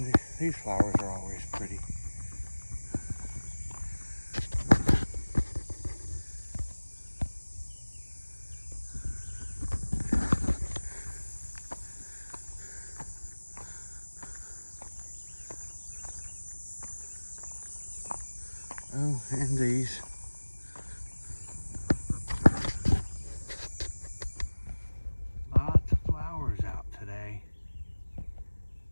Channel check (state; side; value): inverted; both; correlation -1.00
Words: these flowers are always pretty. Oh, and these. Lots of flowers out today.